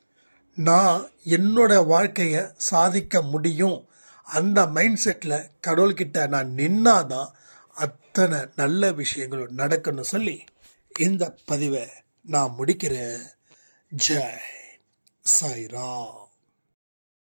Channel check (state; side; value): inverted; both; correlation -1.00